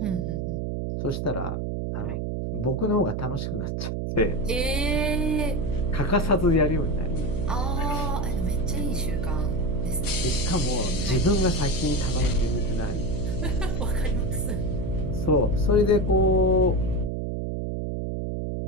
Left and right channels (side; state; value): right; noise; hum, 2 dB below the sound